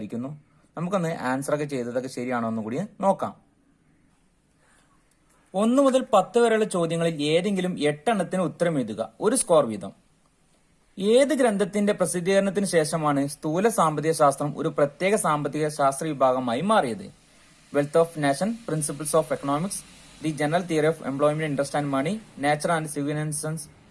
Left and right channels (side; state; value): both; identical; correlation 1.00